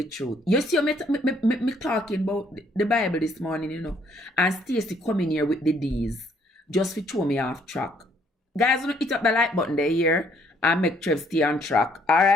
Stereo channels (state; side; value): normal; both; correlation 0.66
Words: truth. You see me talking about the Bible this morning, you know, and Stacy coming here with the D's just to throw me off track. Guys, don't hit up the like button there here and make Trev stay on track. All